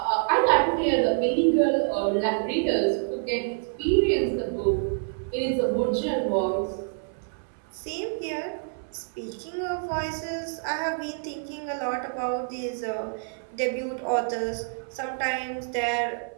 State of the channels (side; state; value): left; silent; 60 dB below the other